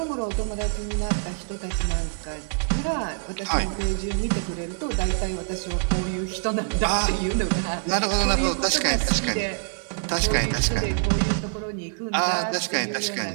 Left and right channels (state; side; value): silent; left; digital silence